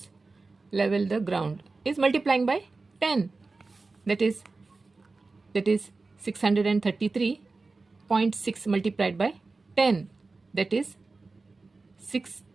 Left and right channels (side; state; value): left; quieter; 3.7 dB